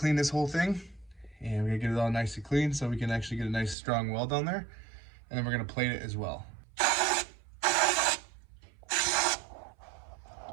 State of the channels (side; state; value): left; drops out; at 3.8 s